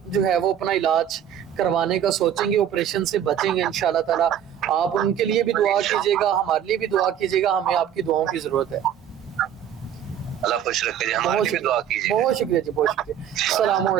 جو ہے وہ اپنا علاج کروانے کا سوچیں گے، آپریشن سے بچیں گے انشاءاللہ تعالی. آپ ان کے لیے بھی دعا کیجیے گا، ہمارے لیے بھی دعا کیجیے گا، ہمیں آپ کی دعاؤں کی ضرورت ہے. اللہ خوش رکھے جی، ہمارے لیے بھی دعا کیجیے. بہت شکریہ جی، بہت شکریہ. السلام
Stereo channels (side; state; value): left; quieter; 9.8 dB